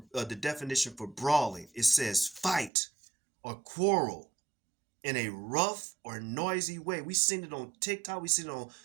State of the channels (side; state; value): left; drops out; at 2.7 s